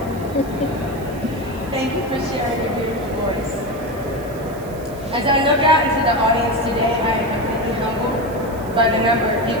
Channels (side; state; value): right; noise; hiss, 21 dB below the sound